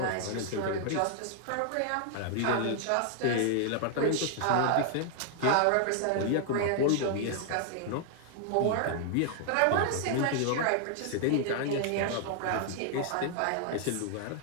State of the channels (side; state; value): both; different; correlation 0.00